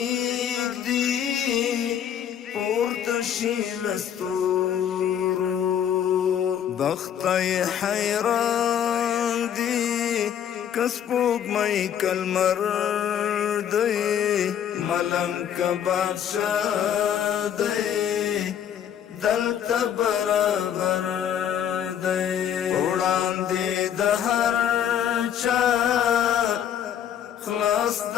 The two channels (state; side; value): quieter; right; 9.3 dB